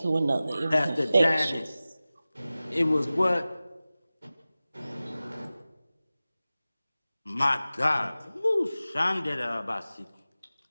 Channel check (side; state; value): both; inverted; correlation -0.97